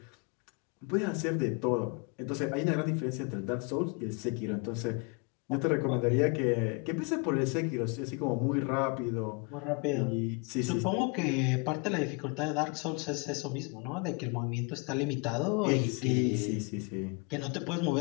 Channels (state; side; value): quieter; right; 31.9 dB